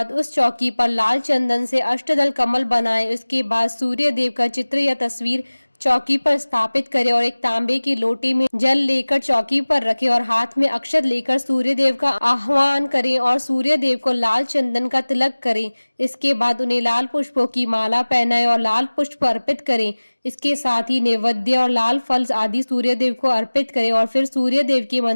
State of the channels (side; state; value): both; inverted; correlation -1.00